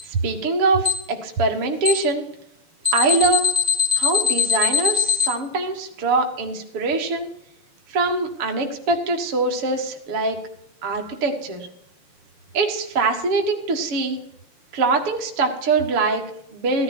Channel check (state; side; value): late; left; 6.9 ms